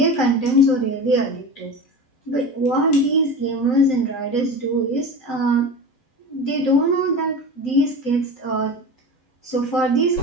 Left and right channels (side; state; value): right; late; 12 ms